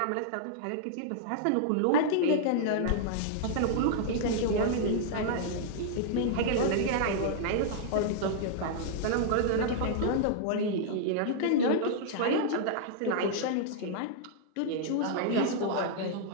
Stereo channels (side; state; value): both; different; correlation -0.01